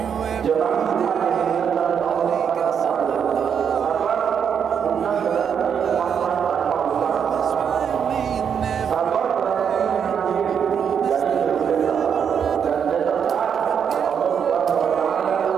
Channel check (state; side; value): quieter; left; 7.5 dB